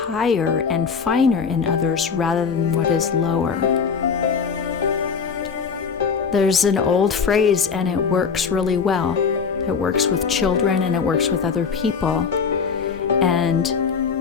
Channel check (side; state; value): right; quieter; 5.9 dB